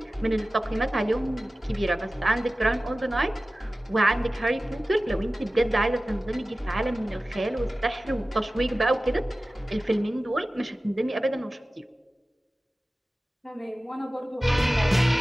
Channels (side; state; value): both; normal; correlation 0.96